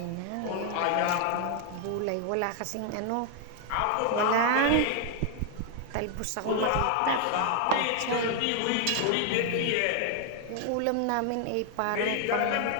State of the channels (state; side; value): different; both; correlation 0.00